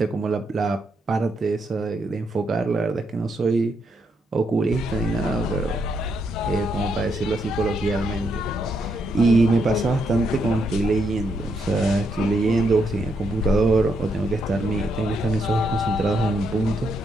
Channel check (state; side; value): normal; both; correlation 0.78